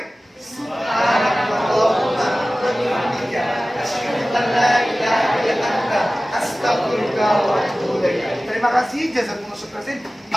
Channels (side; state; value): both; normal; correlation 0.97